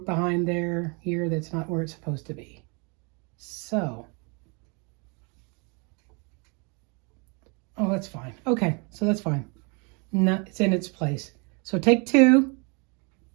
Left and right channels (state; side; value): quieter; left; 32.8 dB